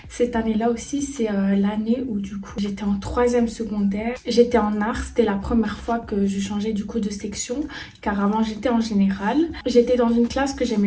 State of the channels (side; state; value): both; identical; correlation 1.00